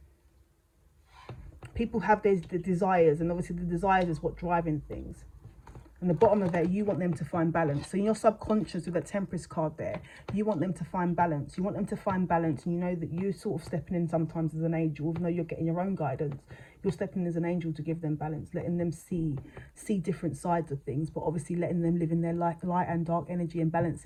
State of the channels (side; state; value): both; identical; correlation 1.00